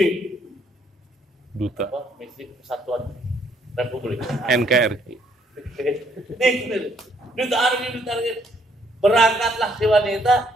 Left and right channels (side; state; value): both; normal; correlation 0.68